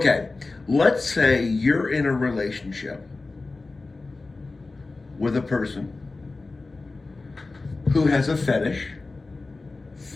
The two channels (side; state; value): right; quieter; 3.5 dB